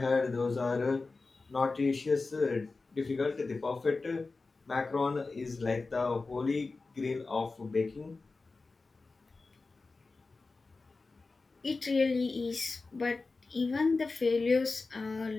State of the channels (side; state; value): right; quieter; 3.8 dB